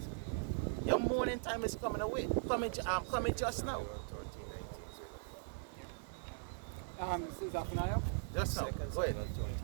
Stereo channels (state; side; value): silent; left; digital silence